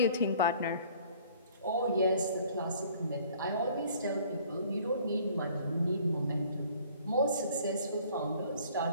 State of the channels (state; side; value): inverted; both; correlation -0.54